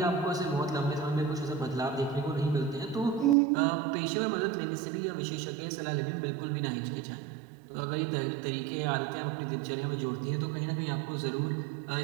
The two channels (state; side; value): drops out; left; at 3.4 s